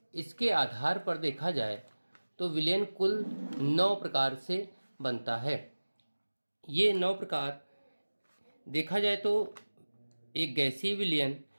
इसके आधार पर देखा जाए तो विलयन कुल 9 प्रकार से बनता है। ये 9 प्रकार देखा जाए तो एक गैसीय विलयन,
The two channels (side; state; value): both; inverted; correlation -1.00